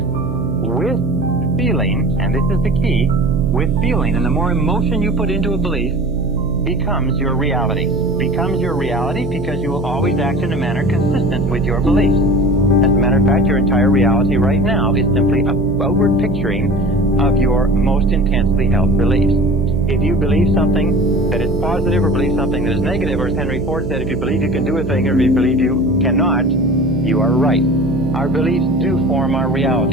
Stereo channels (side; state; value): right; noise; hum, 7 dB below the sound